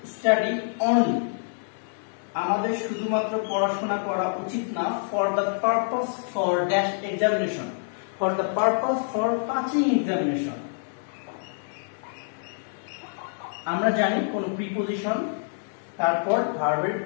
study only, আমাদের শুধুমাত্র পড়াশোনা করা উচিত না, for the purpose for dash examination, for the purpose for passing examination। আমরা জানি কোন প্রিপজিশন তারপর ভার্বের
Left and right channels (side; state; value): right; silent; digital silence